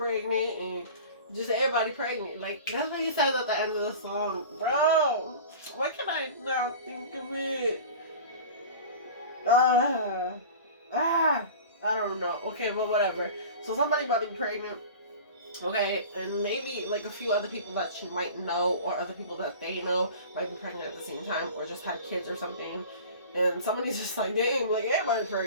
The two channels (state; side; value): inverted; both; correlation -0.38